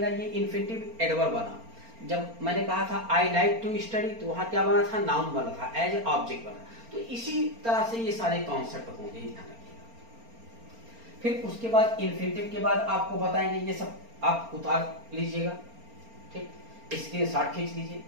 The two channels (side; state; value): left; late; 4.3 ms